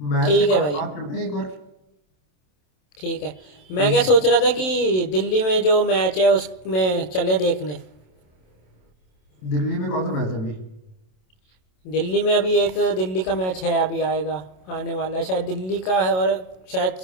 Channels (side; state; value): right; late; 27 ms